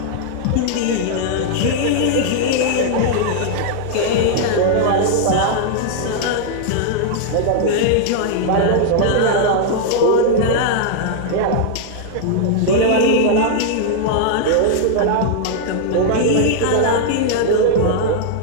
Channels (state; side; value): different; both; correlation -0.01